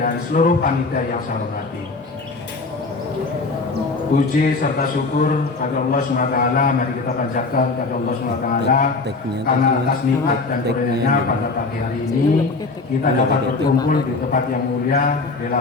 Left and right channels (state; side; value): quieter; right; 3.8 dB